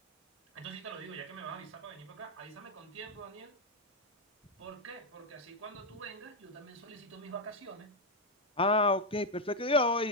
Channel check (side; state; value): both; normal; correlation 0.03